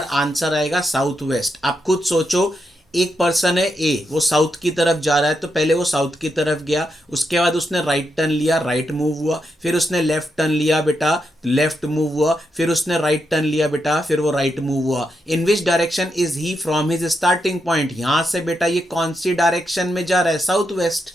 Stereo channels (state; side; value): normal; both; correlation 0.83